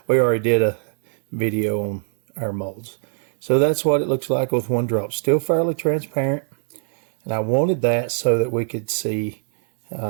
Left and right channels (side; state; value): left; silent; digital silence